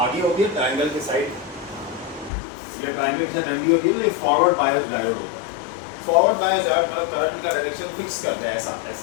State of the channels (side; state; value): right; drops out; at 2.3 s